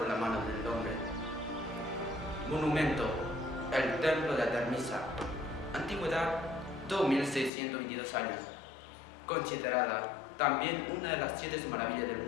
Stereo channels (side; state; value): right; drops out; at 7.5 s